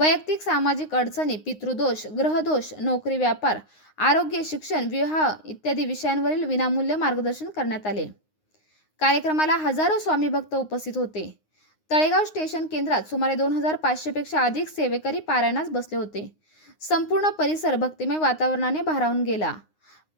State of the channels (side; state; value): right; late; 9.6 ms